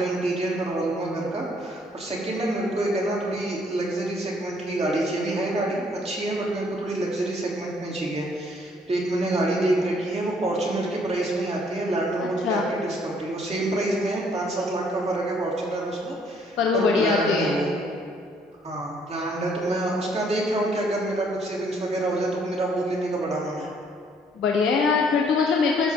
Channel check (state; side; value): normal; both; correlation 0.64